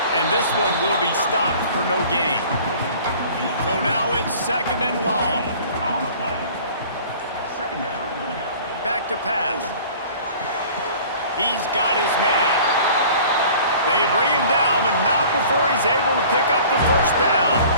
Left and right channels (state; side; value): inverted; both; correlation -0.47